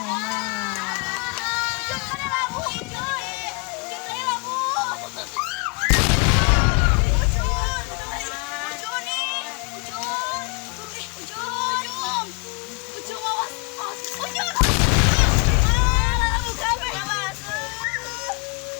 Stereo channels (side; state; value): right; quieter; 31.1 dB